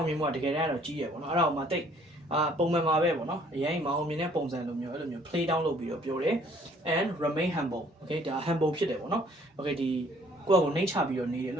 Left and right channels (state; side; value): normal; both; correlation 0.59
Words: ာင်မြင်မှုကတကယ်တမ်းတော့ကြီးရယ်ပေါ့နော်အဲ့ဒါကိုမှတိတ်ပုံမှန်မှာပဲပေါ့နော်အရင်မအောင်မြင်တဲ့ပုံစံလိုမျိုးအဲ့လိုမျိုး play down လုပ်ပြီးတော့ပြောတယ် and remain humble okay ဒါ humble ဖြစ်တယ်ပေါ့နော် okay ဒီကိုယ့်ကိုနှိမ့်ချပြီးတော့နေတယ်လ